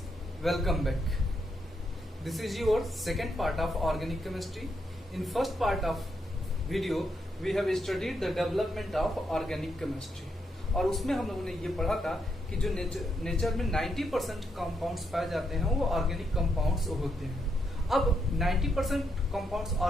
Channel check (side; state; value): both; normal; correlation 0.80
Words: welcome back. This is your second part of organic chemistry. In first part of video we have studied the development of organic chemistry और उसमें हम लोगों ने ये पढ़ा था कि जो नेचर में 90% कंपाउंड्स पाए जाते हैं वो ऑर्गेनिक कंपाउंड्स होते हैं। अब 90% कंपाउंड्स